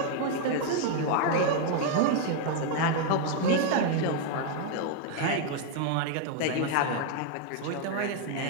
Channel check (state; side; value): different; both; correlation 0.00